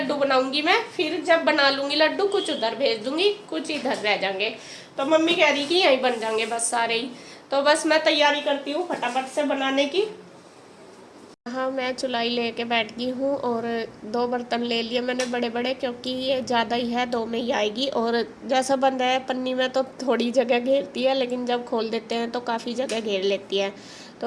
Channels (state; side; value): identical; both; correlation 1.00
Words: बनाऊंगी मैं। फिर जब बना लूंगी लड्डू, कुछ उधर भेज दूंगी, कुछ इधर रह जाएंगे। तो मम्मी कह रही कि यहीं बन जाएंगे बस सारे ही। तो बस मैं तैयारी करती हूँ फटाफट से बनाने की। हाँ, मैं चुलाई लेके बैठ गई हूँ और 2 बर्तन ले लिए मैंने बड़े बड़े, क्योंकि ये ज़्यादा ही है, 2 में ही आएगी। और जैसा बंद है पन्नी में तो थोड़ी जगह घेरती है, लेकिन जब खोल देते हैं तो काफ़ी जगह घेर लेती है।